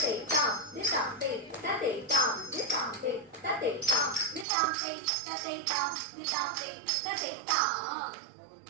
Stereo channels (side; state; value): left; drops out; at 4.5 s